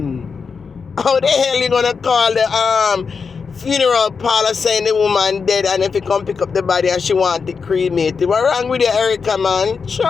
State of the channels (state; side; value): quieter; right; 5.4 dB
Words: How the hell you gonna call the funeral parlor saying the woman dead, and if you come pick up the body and she want it cremated? What wrong with you, Erica, man? Sure.